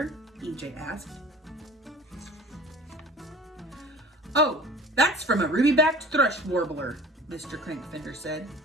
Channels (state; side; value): normal; both; correlation 0.43